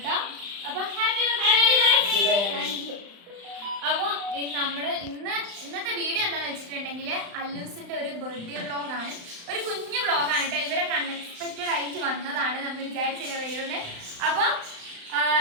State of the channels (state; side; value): late; left; 35 ms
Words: അപ്പോൾ ഹാപ്പി ബർത്ത്ഡേ. അപ്പോൾ ഇന്നത്തെ വീഡിയോ എന്താണെന്ന് വെച്ചിട്ടുണ്ടെങ്കിൽ അല്ലൂസിന്റെ ഒരു ബർത്ത്ഡേ വ്ളോഗാണ്. ഒരു കുഞ്ഞു വ്ളോഗാണ് കേട്ടോ. ഇവരൊക്കെ അൺഎക്സ്പെക്റ്റഡ് ആയിട്ട് വന്നതാണ്, നമ്മൾ വിചാരിച്ചില്ല വരുന്നത്. അപ്പോൾ